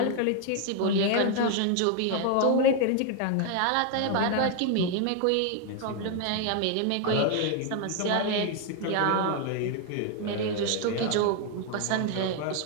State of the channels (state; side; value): different; both; correlation 0.01